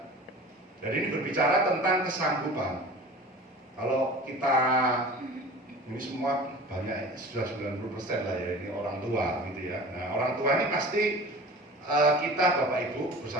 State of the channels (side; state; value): both; normal; correlation 0.39